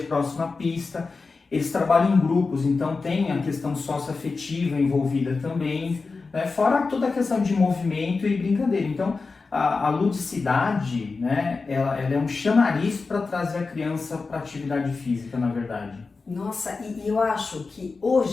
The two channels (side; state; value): right; quieter; 4.2 dB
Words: pista. Eles trabalham em grupos, então tem a questão socioafetiva envolvida também, né? Fora toda a questão de movimento e brincadeira. Então, a ludicidade, né, ela é um chamariz para trazer a criança para a atividade física, na verdade. Nossa, e eu acho que